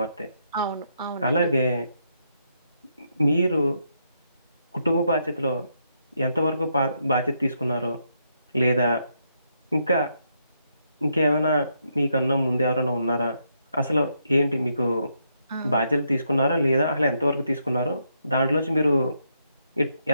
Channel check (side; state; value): both; inverted; correlation -0.78